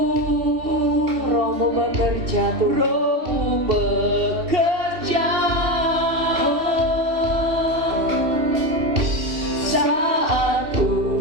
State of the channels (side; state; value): left; late; 2.7 ms